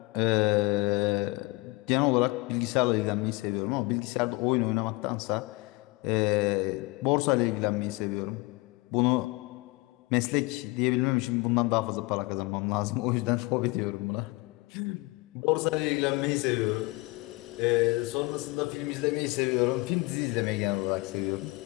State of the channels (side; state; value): right; quieter; 24.4 dB